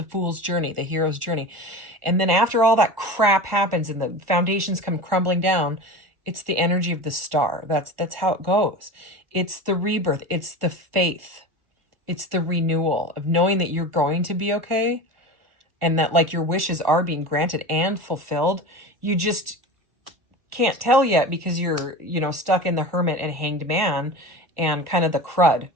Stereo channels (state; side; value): late; left; 1.4 ms